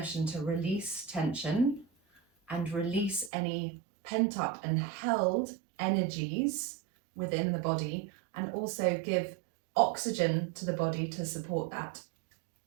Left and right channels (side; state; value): left; drops out; at 3.3 s